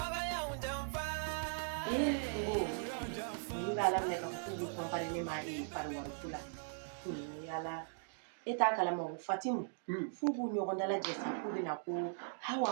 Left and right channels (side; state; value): left; silent; digital silence